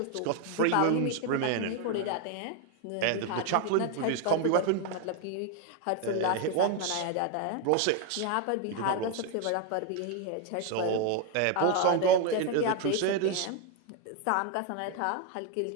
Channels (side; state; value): both; different; correlation 0.01